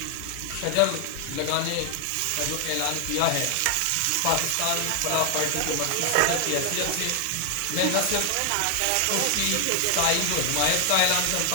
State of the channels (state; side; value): different; both; correlation 0.00